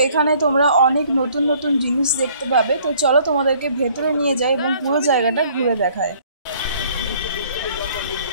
এখানে তোমরা অনেক নতুন নতুন জিনিস দেখতে পাবে। তো চলো তোমাদেরকে ভেতরে নিয়ে যাই এবং পুরো জায়গাটা ঘুরে দেখায়।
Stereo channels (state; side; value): inverted; both; correlation -0.58